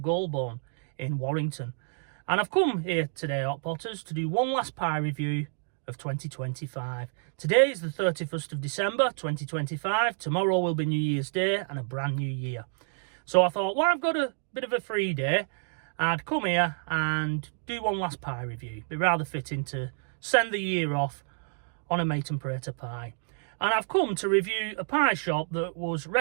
in Warrington. And I've come here today, Hot Potters, to do one last pie review of 2025. Today is the 31st of December 2025. Tomorrow will be New Year's Day and a brand new year. So I thought, well, I've got a bit of a free day, I'd come here and do one last pie review. Be rather fitting to send the year off on a mate and prater pie. And I've come to review a pie shop that was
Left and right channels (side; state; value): left; silent; 59 dB below the other